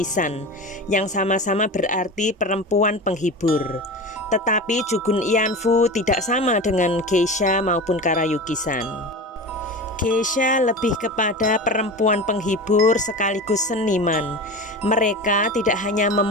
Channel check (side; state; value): both; normal; correlation 0.29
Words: yang sama-sama berarti perempuan penghibur. Tetapi Jugun Ianfu tidak sama dengan geisha maupun karayuki-san. Geisha lebih kepada perempuan penghibur sekaligus seniman. Mereka tidak hanya